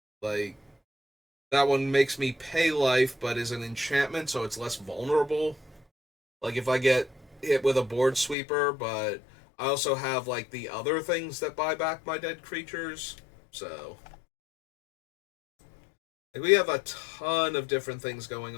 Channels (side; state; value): right; drops out; at 8.3 s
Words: Like, that one makes me pay life, but is an enchantment, so it's less vulnerable. Like, if I get hit with a board sweeper, but I also have, like, the other things that buy back my dead creatures. So, like, we have a ton of different things going